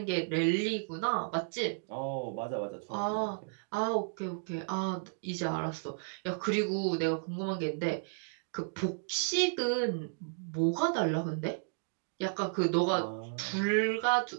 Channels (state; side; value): silent; left; digital silence